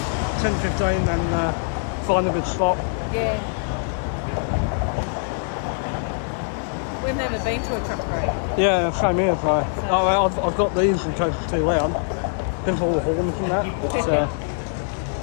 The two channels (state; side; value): silent; right; digital silence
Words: 10:15 and find a good spot. Yeah. We've never been to a truck parade. Yeah, same here. So I've got these in case it's too loud. Been for all the horns and that.